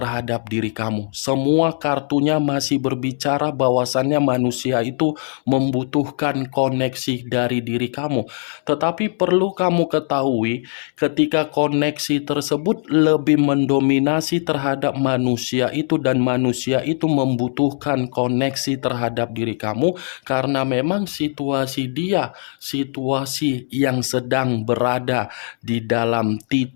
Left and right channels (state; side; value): silent; right; 66 dB below the other